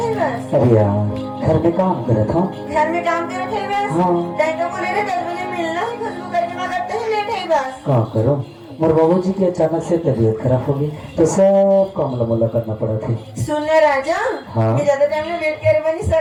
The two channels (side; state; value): both; identical; correlation 1.00